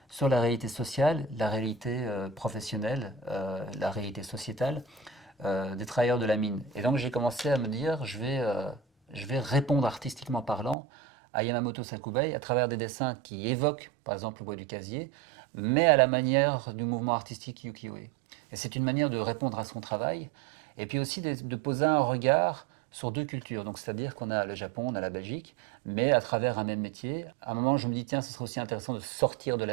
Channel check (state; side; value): drops out; left; at 10.8 s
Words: sur la réalité sociale, la réalité professionnelle, la réalité sociétale des travailleurs de la mine. Et donc j'ai commencé à me dire, je vais répondre artistiquement parlant à Yamamoto Sakubai à travers des dessins qui évoquent par exemple le Bois du Casier, mais à la manière du mouvement artistique ukiyo-e. Et c'est une manière de répondre à son travail, et puis aussi de poser un regard sur deux cultures. Donc c'est-à-dire qu'on a le Japon, on a la Belgique, mais à travers un même métier. À un moment, je me dis, tiens, ce serait aussi intéressant de sortir de